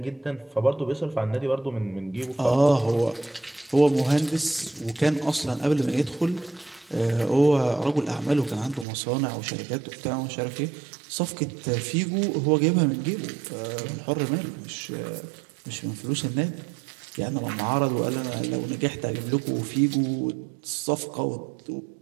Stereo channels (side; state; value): left; drops out; at 8.8 s